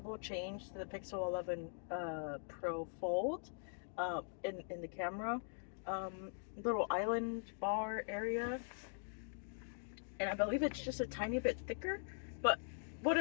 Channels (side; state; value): right; silent; digital silence